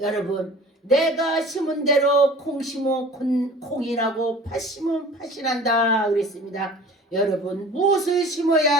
내가 심은 대로 콩 심으면 콩이 나고 팥 심으면 팥이 난다 그랬습니다. 여러분 무엇을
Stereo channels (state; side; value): normal; both; correlation 0.44